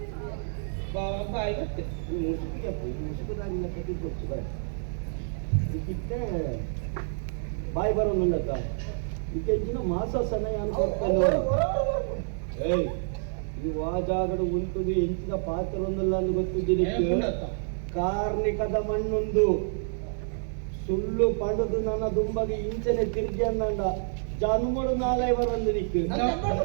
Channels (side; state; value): left; silent; digital silence